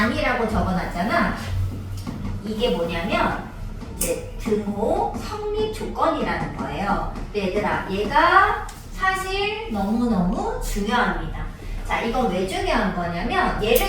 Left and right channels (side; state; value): both; identical; correlation 1.00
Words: 적어놨잖아. 이게 뭐냐면 이제 등호 성립 조건이라는 거예요. 근데 얘들아, 얘가 사실 너무너무 중요합니다. 자, 이건 왜 중요한 거냐면